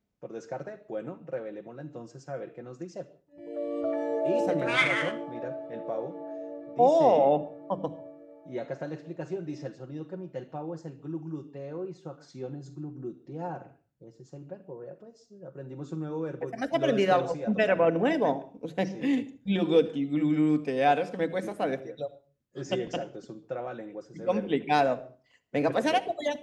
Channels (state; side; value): identical; both; correlation 1.00